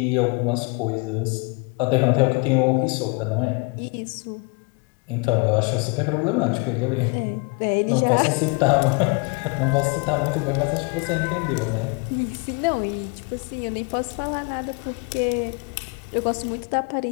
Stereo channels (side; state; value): right; quieter; 30.7 dB